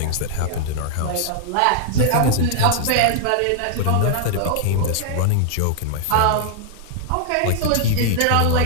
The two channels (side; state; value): both; different; correlation -0.01